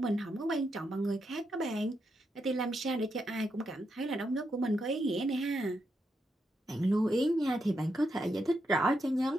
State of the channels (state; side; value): normal; both; correlation 0.82